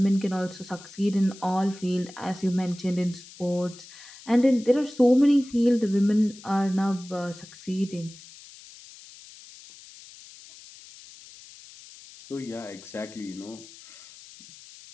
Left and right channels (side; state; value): left; noise; hiss, 19 dB below the sound